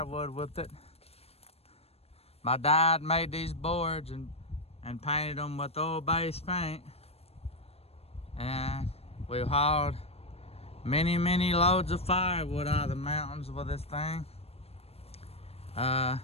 with it. My dad made these boards and painted them with oil-based paint, and we've hauled many loads of firewood out of the mountains with this thing.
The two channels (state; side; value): late; right; 0.29 ms